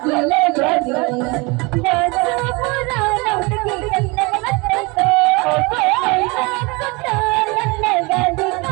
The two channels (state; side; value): quieter; left; 27.1 dB